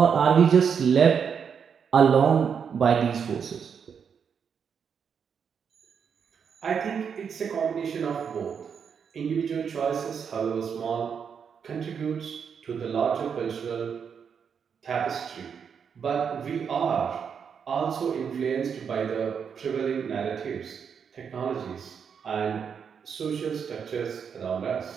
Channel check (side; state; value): left; quieter; 6.9 dB